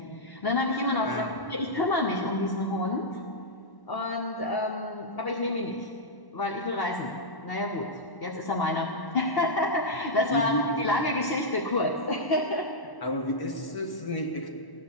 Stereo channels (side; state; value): right; late; 1.1 ms